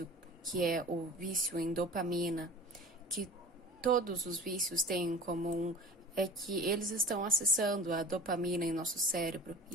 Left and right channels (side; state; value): both; normal; correlation 0.40